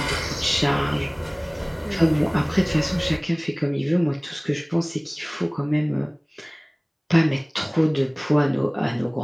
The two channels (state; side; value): identical; both; correlation 1.00